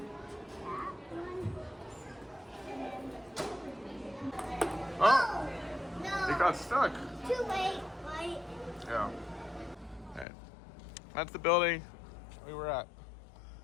That one. Oh, No. it got stuck. Too late, right? Yeah. All right. That's the building we were at.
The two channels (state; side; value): drops out; right; at 10.2 s